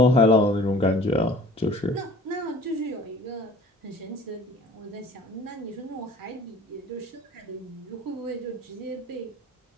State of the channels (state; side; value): normal; both; correlation 0.49